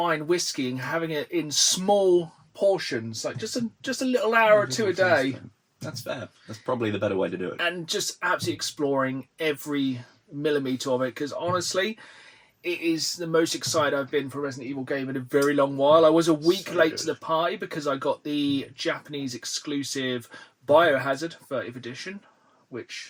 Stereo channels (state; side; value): identical; both; correlation 1.00